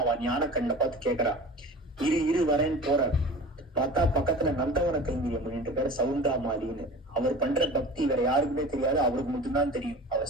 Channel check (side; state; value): both; normal; correlation 0.37